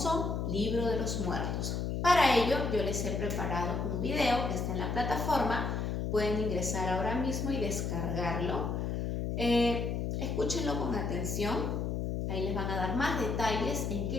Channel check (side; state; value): left; noise; hum, 1 dB below the sound